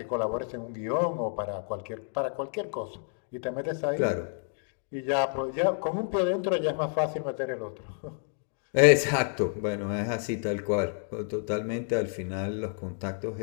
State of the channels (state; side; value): silent; right; digital silence